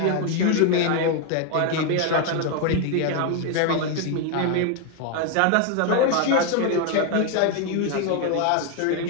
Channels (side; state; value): both; different; correlation 0.01